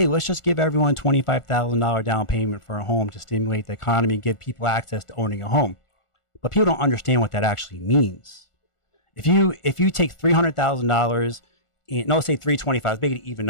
let's just give everyone $25,000 down payment for a home to stimulate the economy and give people access to owning a home. But people don't understand what that actually means. If you take $300,000, no, say $325,000, let's make it an even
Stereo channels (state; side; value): late; right; 1.4 ms